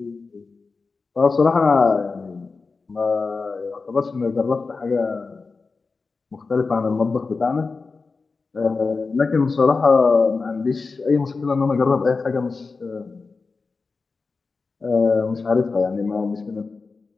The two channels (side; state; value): right; quieter; 4.3 dB